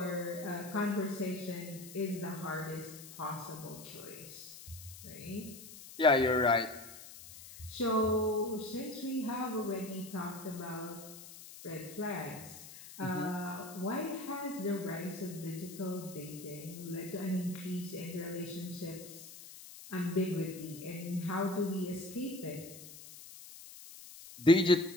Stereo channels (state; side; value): noise; left; hiss, 15 dB below the sound